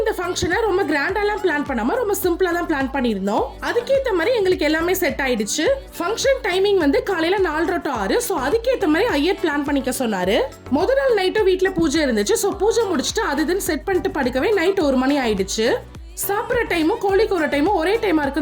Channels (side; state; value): both; identical; correlation 1.00